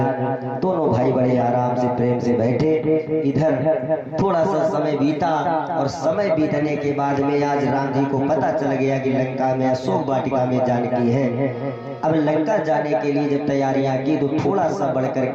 दोनों भाई बड़े आराम से प्रेम से बैठे। इधर थोड़ा सा समय बीता और समय बीतने के बाद में आज राम जी को पता चल गया कि लंका में अशोक वाटिका में जानकी है। अब लंका जाने के लिए जब तैयारियां की तो थोड़ा सा बढ़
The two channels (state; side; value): identical; both; correlation 1.00